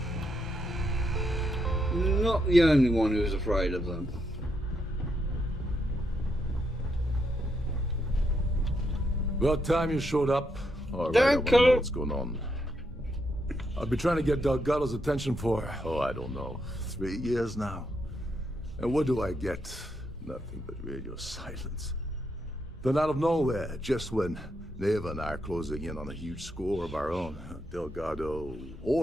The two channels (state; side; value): normal; both; correlation 0.79